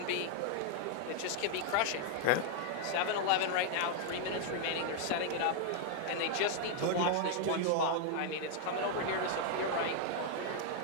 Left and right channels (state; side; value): different; both; correlation 0.00